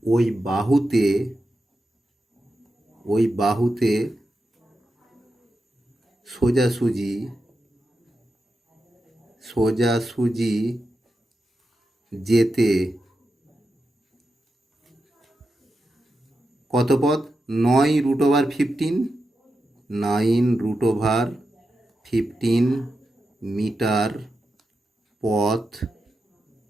ওই বাহুতে সোজাসুজি যেতে কত পথ? 9√15 মিটার পথ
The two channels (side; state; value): both; normal; correlation 0.89